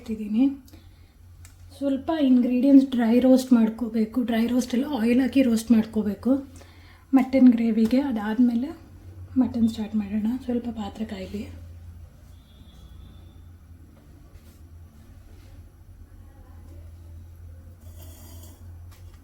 ಸ್ವಲ್ಪ ಇಂಗ್ರೀಡಿಯೆಂಟ್ಸ್ ಡ್ರೈ ರೋಸ್ಟ್ ಮಾಡ್ಕೋಬೇಕು. ಡ್ರೈ ರೋಸ್ಟಲ್ಲಿ ಆಯಿಲ್ ಹಾಕಿ ರೋಸ್ಟ್ ಮಾಡ್ಕೋಬೇಕು ಮಟನ್ ಗ್ರೇವಿಗೆ. ಅದಾದಮೇಲೆ ಮಟನ್ ಸ್ಟಾರ್ಟ್ ಮಾಡೋಣ. ಸ್ವಲ್ಪ ಪಾತ್ರೆ ಕಾಯಲಿ.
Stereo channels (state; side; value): identical; both; correlation 1.00